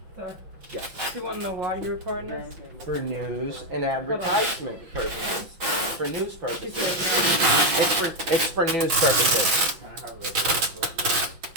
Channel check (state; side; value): late; left; 5.8 ms